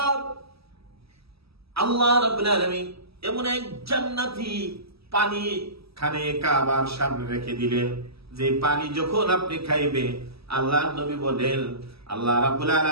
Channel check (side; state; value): left; late; 0.77 ms